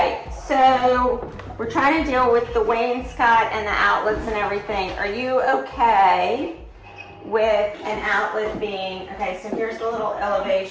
so we're trying to deal with the wainscot and the outlets and everything. Are you okay with an outlet being, okay, so here's the little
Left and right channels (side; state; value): both; identical; correlation 1.00